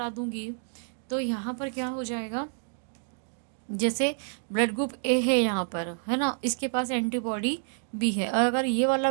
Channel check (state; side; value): silent; left; digital silence